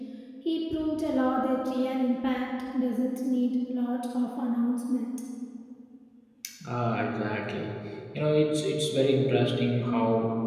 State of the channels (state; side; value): identical; both; correlation 1.00